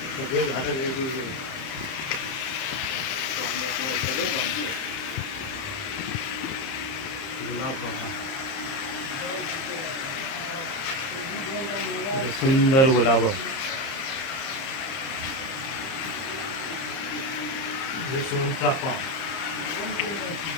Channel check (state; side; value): late; right; 30 ms